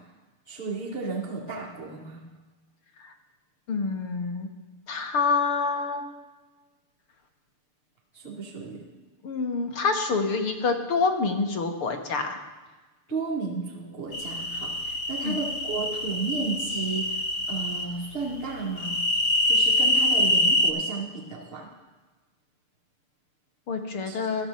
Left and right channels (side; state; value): right; late; 6.7 ms